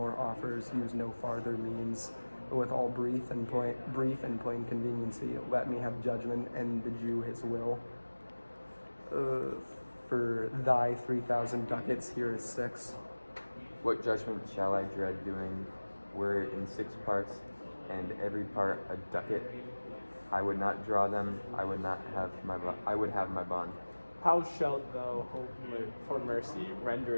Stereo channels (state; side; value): inverted; both; correlation -1.00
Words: offers, use no farther means. But with all brief and plain conveniency, let me have judgment, and the Jew his will. For thy 3,000 ducats, here is 6. What judgment shall I dread doing, were it in 6 parts, and every part a ducat? I would not draw them, I would have my bond. How shalt thou hope for mercy,